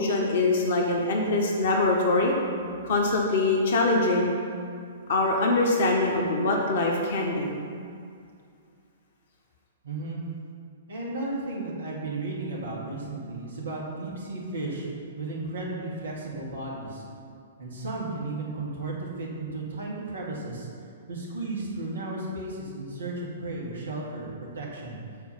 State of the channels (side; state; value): both; inverted; correlation -0.35